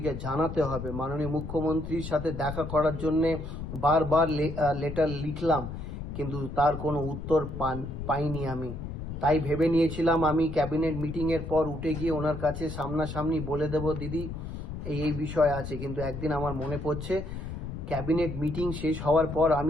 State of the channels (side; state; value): left; noise; rumble, 7 dB below the sound